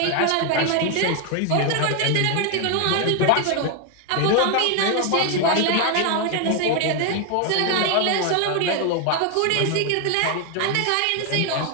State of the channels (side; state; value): both; different; correlation 0.01